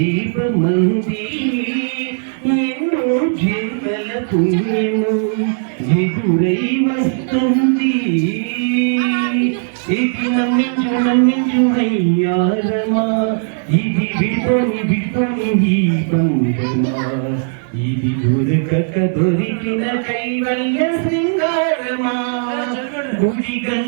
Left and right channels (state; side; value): silent; left; digital silence